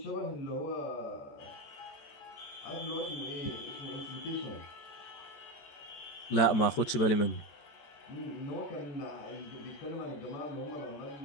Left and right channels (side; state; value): right; late; 14 ms